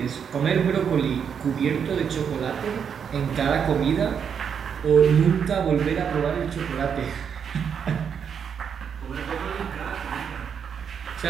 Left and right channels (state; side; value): quieter; left; 7.3 dB